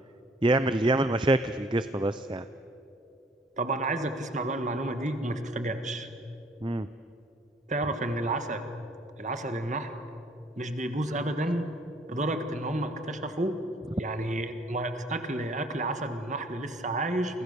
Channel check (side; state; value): both; normal; correlation 0.58